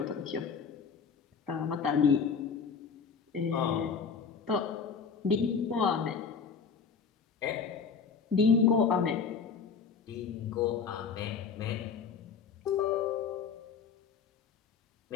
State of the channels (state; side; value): quieter; right; 6.0 dB